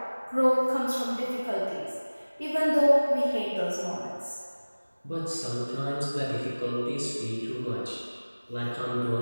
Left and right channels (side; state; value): both; inverted; correlation -1.00